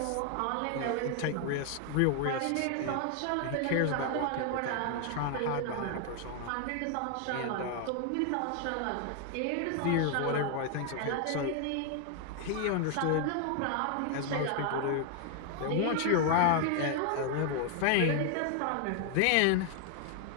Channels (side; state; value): both; different; correlation 0.00